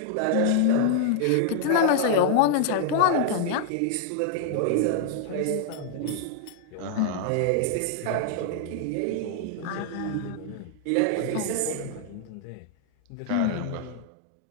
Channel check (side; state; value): both; different; correlation -0.01